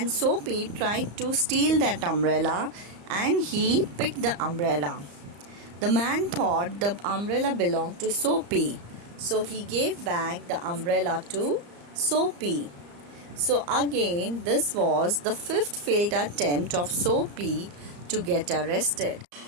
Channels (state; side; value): late; left; 34 ms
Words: Soapy tried to steal that umbrella and he picked the umbrella. The man thought the umbrella belonged to Soapy. So he gave back the umbrella to Soapy. So again, this was the fifth failed attempt of Soapy to get arrested.